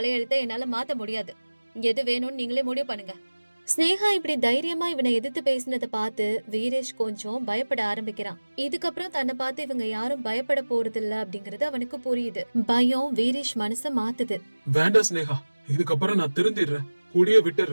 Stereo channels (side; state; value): both; inverted; correlation -1.00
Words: என்னால மாத்த முடியாது. எது வேணும்னு நீங்களே முடிவு பண்ணுங்க. ஸ்னேகா இப்படி தைரியமா இவனை எதிர்த்து பேசினதை பார்த்து வீரேஷ் கொஞ்சம் பயப்பட ஆரம்பிக்கிறான். இதுக்கப்புறம் தன்னை பார்த்து இவங்க யாரும் பயப்பட போறது இல்ல அப்படிங்கறது அவனுக்கு புரியுது. பயம் வீரேஷ் மனச மாத்துது. வேண்டாம் ஸ்னேகா, இதுக்கப்புறம் நான் திருந்திடுறேன், குடிய